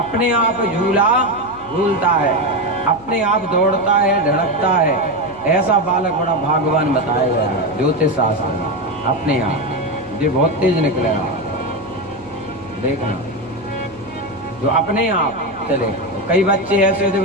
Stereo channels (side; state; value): left; noise; hum, 21 dB below the sound